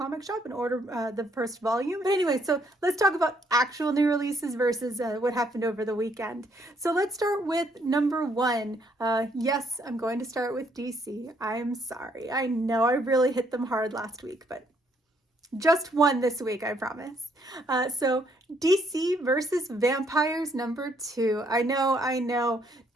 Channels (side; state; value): both; normal; correlation 0.69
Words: shop and order the first volume. But anyway, so let's talk about actual new releases versus what happened over the weekend. So let's start with number one. Yes, I'm going to start with DC. I'm sorry. I know I really hit them hard last week, but just one this week, I promise. So DC versus Vampires number 2. I know.